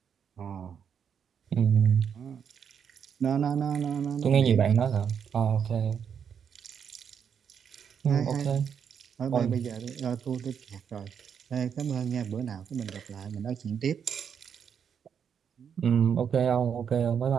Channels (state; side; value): quieter; left; 7.5 dB